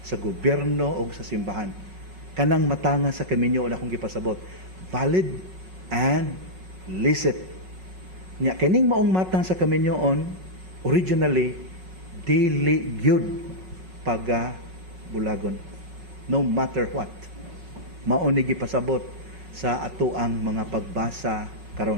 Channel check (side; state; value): left; late; 5.4 ms